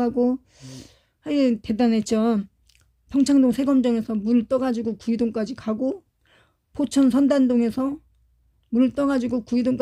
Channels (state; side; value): identical; both; correlation 1.00